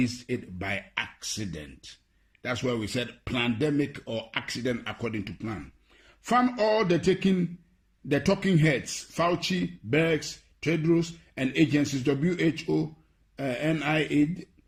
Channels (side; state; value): both; identical; correlation 1.00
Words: it by accident. That's why we said pandemic or accident according to plan. Found all the talking heads, Fauci, Birx, Tedros, and agencies, WHO, NIH,